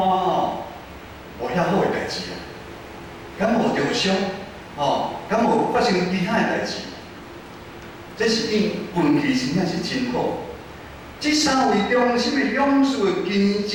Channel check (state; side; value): identical; both; correlation 1.00